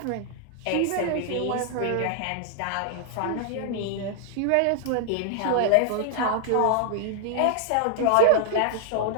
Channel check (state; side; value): different; both; correlation -0.01